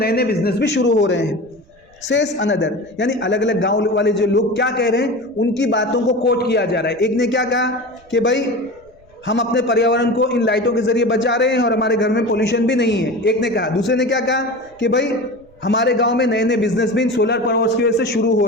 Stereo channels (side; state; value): right; noise; rumble, 29 dB below the sound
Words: नए बिजनेस भी शुरू हो रहे हैं। सेस अनदर, यानी अलग अलग गांव वाले जो लोग क्या कह रहे हैं, उनकी बातों को कोट किया जा रहा है। एक ने क्या कहा कि भाई हम अपने पर्यावरण को इन लाइटों के जरिए बचा रहे हैं और हमारे घर में पोल्यूशन भी नहीं है, एक ने कहा। दूसरे ने क्या कहा कि भाई हमारे गांव में नए नए बिजनेस भी इन सोलर पावर्स की वजह से शुरू हो